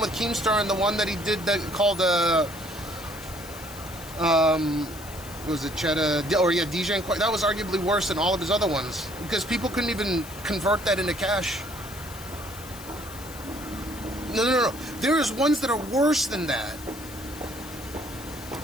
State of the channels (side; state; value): left; noise; hiss, 16 dB below the sound